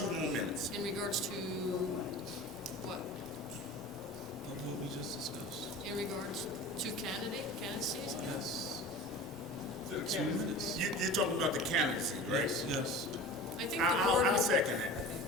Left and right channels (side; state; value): both; normal; correlation 0.37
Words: more minutes. In regards to what? What we just discussed. In regards to candidacies? Yes. 2 minutes. You're talking about the candidacy, right? Yes. I think the board. I'll second that.